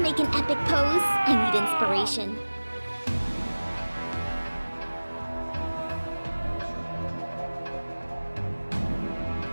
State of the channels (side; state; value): both; inverted; correlation -1.00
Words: an epic pose? I need inspiration.